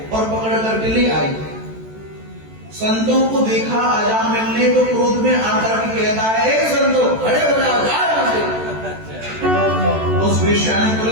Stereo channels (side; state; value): left; late; 14 ms